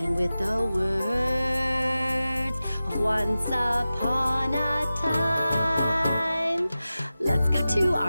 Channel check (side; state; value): both; inverted; correlation -0.95